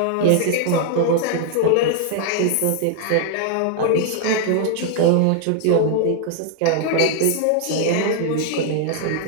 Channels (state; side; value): different; both; correlation 0.00